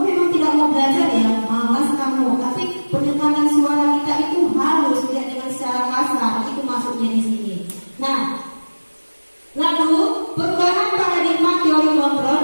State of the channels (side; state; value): both; inverted; correlation -1.00